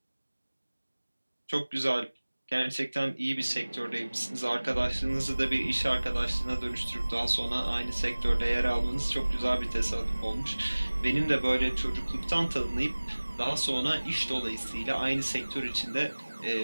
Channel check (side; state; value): both; inverted; correlation -1.00